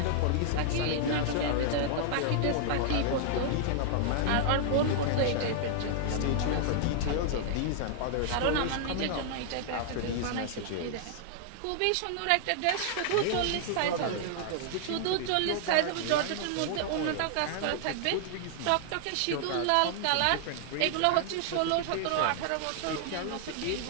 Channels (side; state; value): both; different; correlation -0.01